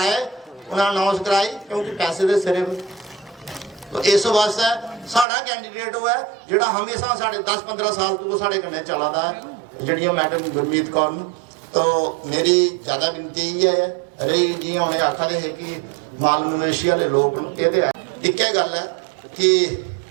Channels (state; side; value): drops out; left; at 5.2 s